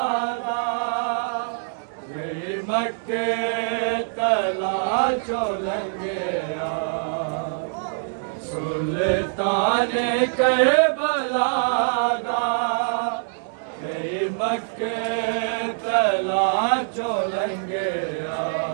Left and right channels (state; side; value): silent; left; digital silence